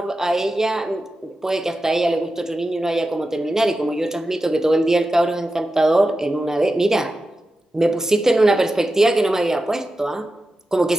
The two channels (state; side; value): normal; both; correlation 0.92